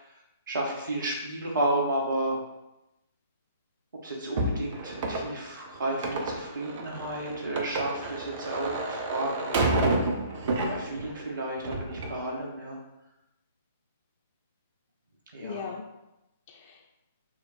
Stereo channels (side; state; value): both; inverted; correlation -0.51